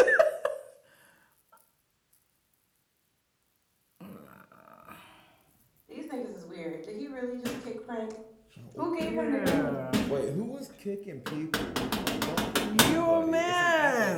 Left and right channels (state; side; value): identical; both; correlation 1.00